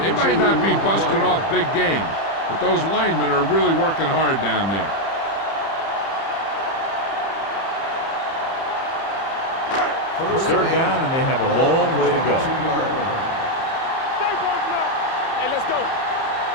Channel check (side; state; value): right; late; 30 ms